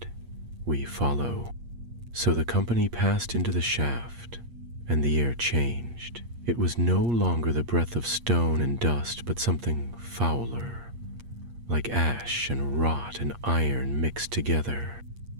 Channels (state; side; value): late; left; 8.5 ms